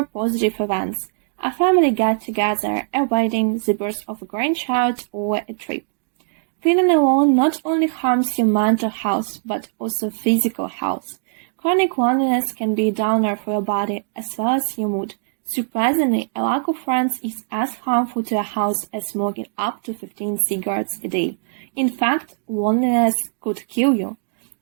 positive events, a family get-together, a wedding, the birth of a grandchild, or a trip. Feeling alone not only harms your mental health, but also physical health. Chronic loneliness can be a downer for your body as well as your mood. Surprisingly, a lack of friends is as harmful to a health as smoking up to 15 cigarettes a day. In fact, loneliness could kill you.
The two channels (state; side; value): silent; left; digital silence